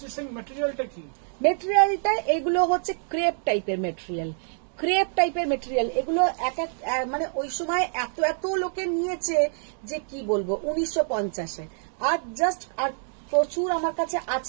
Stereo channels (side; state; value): left; silent; 60 dB below the other